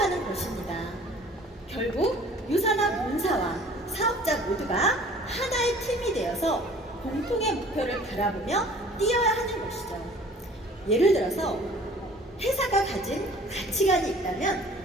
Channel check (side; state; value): both; normal; correlation 0.50